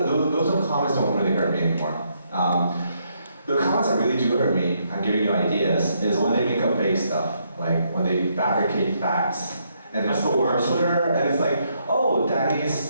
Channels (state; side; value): inverted; both; correlation -0.75